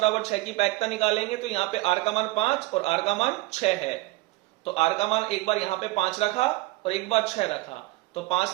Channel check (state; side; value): quieter; left; 20.4 dB